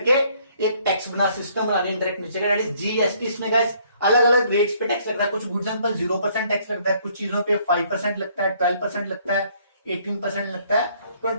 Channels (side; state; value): both; inverted; correlation -0.64